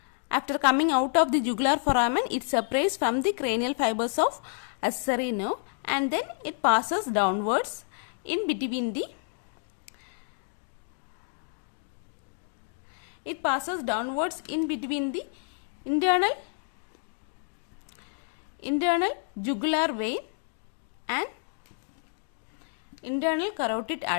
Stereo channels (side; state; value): right; silent; 58 dB below the other